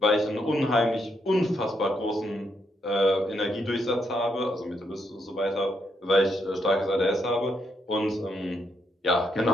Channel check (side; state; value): both; normal; correlation 0.77